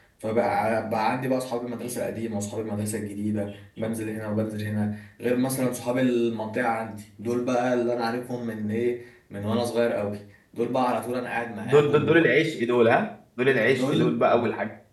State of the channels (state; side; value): identical; both; correlation 1.00